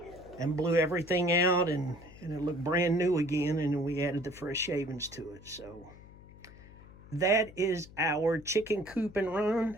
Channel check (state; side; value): noise; left; hum, 20 dB below the sound